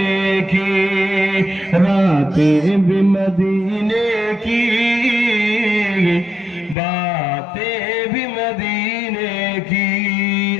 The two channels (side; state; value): right; drops out; at 6.8 s